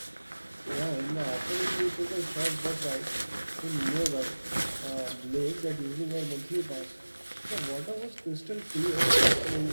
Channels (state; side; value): inverted; both; correlation -1.00